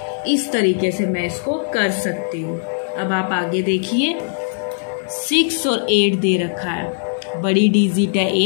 इस तरीके से मैं इसको कर सकती हूँ। अब आप आगे देखिए, 6 और 8 दे रखा है, बड़ी डिजिट है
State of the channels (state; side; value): silent; right; digital silence